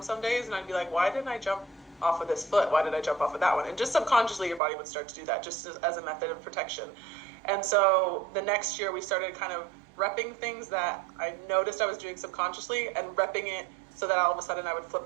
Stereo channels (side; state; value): left; drops out; at 4.6 s